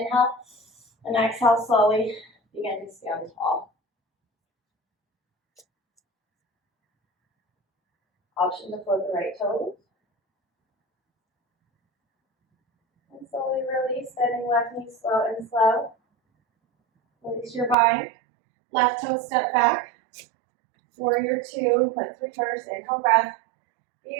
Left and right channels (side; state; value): left; drops out; at 17.8 s